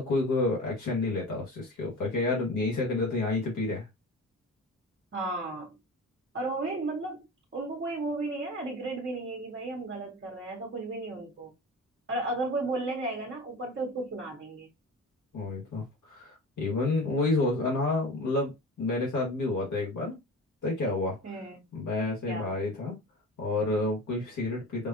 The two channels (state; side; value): normal; both; correlation 0.34